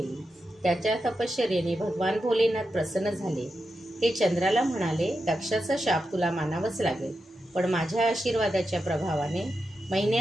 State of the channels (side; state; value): both; normal; correlation 0.88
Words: त्याच्या तपश्चर्येने भगवान भोलेनाथ प्रसन्न झाले। ते चंद्राला म्हणाले, दक्षाचा शाप तुला मानावाच लागेल, पण माझ्या आशीर्वादाच्या प्रभावाने